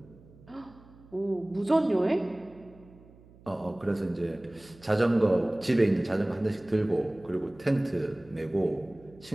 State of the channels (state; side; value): noise; right; hum, 24 dB below the sound